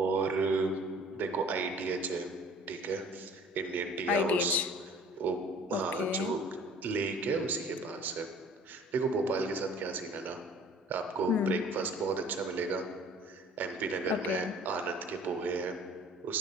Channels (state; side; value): normal; both; correlation 0.50